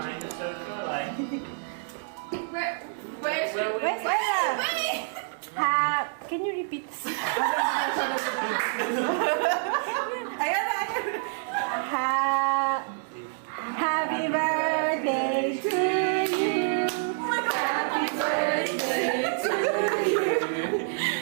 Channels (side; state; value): left; silent; digital silence